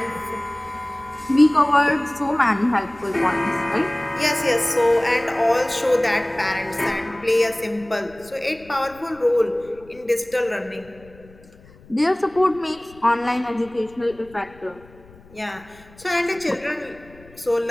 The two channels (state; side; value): noise; left; rumble, 24 dB below the sound